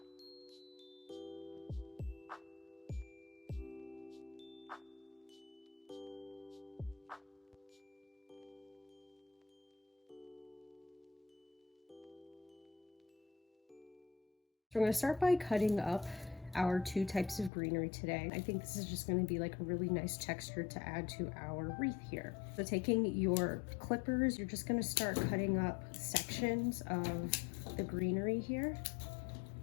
So we're going to start by cutting up our two types of greenery today. I think this is just going to be like a really nice texture to add to our wreath here. So taking your clippers, you're just going to start cutting up sections of the greenery here.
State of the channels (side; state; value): right; drops out; at 17.5 s